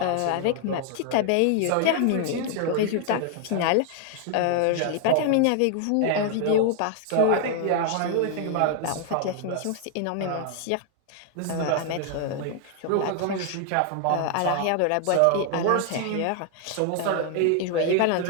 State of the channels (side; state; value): both; different; correlation 0.00